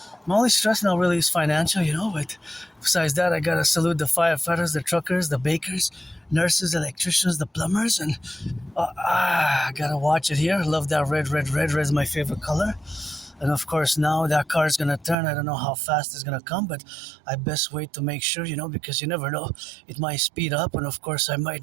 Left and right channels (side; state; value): left; drops out; at 15.2 s